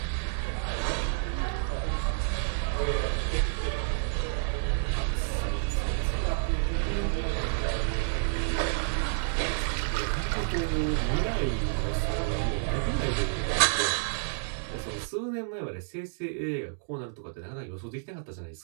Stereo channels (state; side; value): silent; left; digital silence